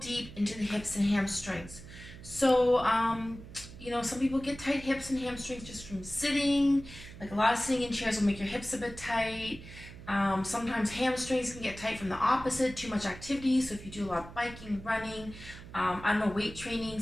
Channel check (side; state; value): right; noise; hum, 15 dB below the sound